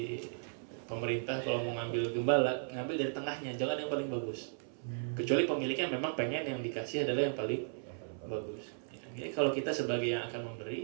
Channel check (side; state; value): left; silent; 54 dB below the other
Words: pemerintah kalau mau ngambil gembala, ngambil dari tengahnya, jangan yang paling bagus. Kecuali pemiliknya memang pengen yang dikasih adalah yang paling bagus. Ya, Jadi kalau kita sebagai yang akan